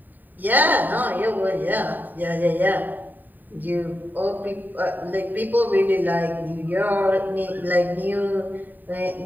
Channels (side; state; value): left; late; 0.088 ms